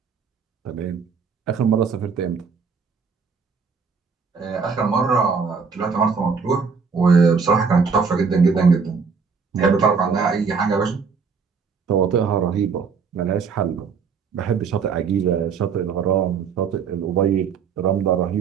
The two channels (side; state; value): left; quieter; 5.6 dB